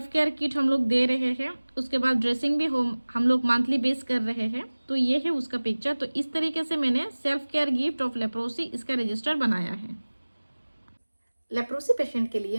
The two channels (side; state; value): both; inverted; correlation -1.00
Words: केयर किट हम लोग दे रहे हैं, उसके बाद ड्रेसिंग भी हम लोग मंथली बेस कर रहे हैं। तो ये है उसका पिक्चर। तो इस तरीके से मैंने self care gift of leprosy इसका रजिस्टर बनाया है। लेप्रोसी पेशेंट के